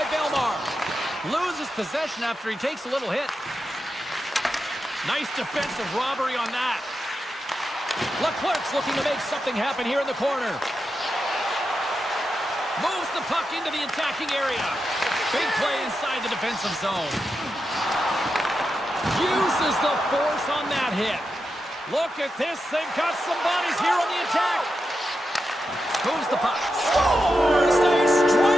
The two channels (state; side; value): normal; both; correlation 0.88